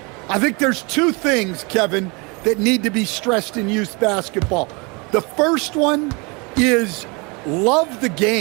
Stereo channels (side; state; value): left; quieter; 29.5 dB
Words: I think there's 2 things, Kevin, that need to be stressed in youth basketball. The first one is love the